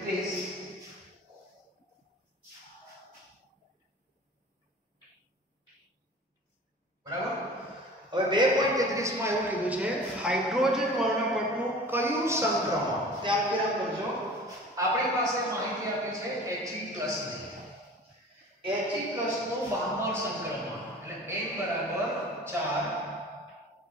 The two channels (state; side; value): normal; both; correlation 0.42